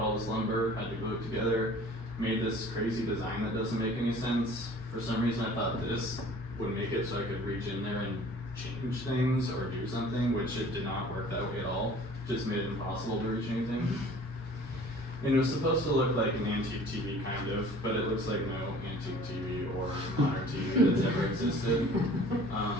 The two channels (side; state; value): both; normal; correlation 0.49